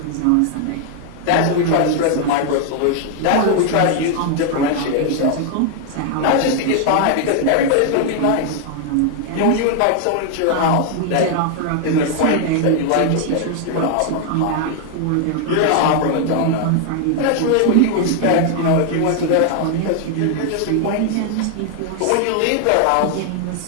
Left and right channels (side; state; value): both; different; correlation 0.00